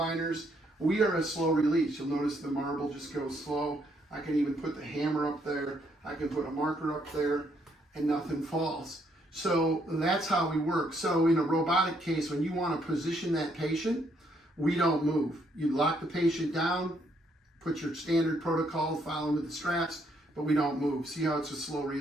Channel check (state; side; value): normal; both; correlation 0.72